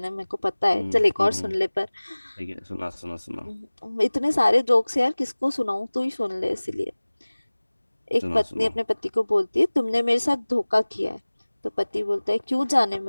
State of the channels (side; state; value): both; inverted; correlation -1.00